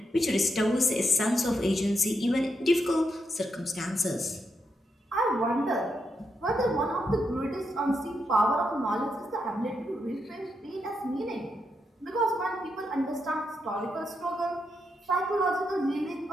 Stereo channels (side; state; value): both; normal; correlation 0.82